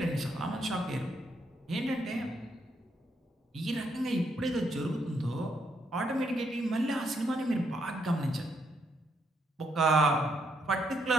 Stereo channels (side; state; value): both; normal; correlation 0.76